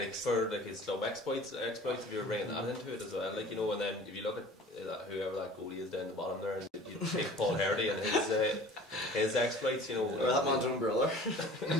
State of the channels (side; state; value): both; normal; correlation 0.45